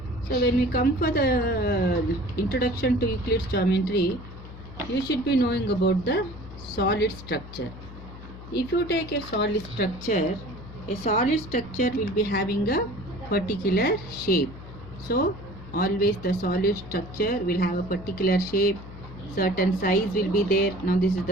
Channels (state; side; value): noise; left; hum, 15 dB below the sound